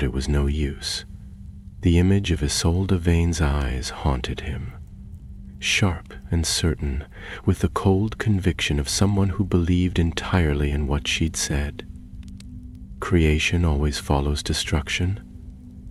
it was no use. The image of Isolde Vane's eyes haunted him, sharp and certain, with the cold conviction of someone who believed entirely in what she'd said. Creation always follows destruction.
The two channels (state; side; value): identical; both; correlation 1.00